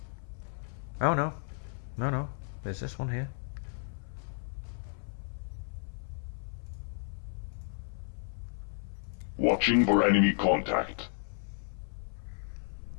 Oh no. No, no. There's this one here. Watching for enemy contact.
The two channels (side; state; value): right; silent; 56 dB below the other